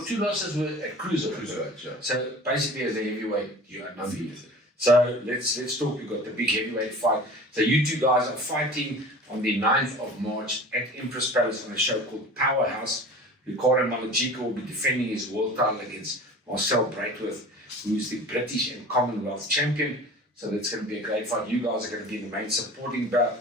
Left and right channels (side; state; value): both; normal; correlation 0.40